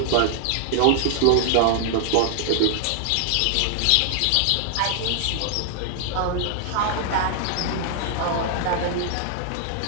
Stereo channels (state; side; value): different; both; correlation -0.01